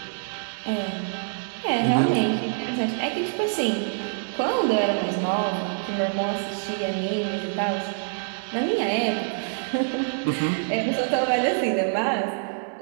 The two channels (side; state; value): left; silent; digital silence